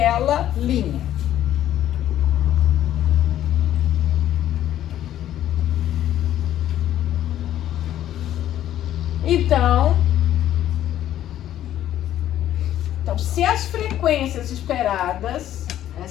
linha. Então, se as frequências esperadas,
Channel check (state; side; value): quieter; right; 12.0 dB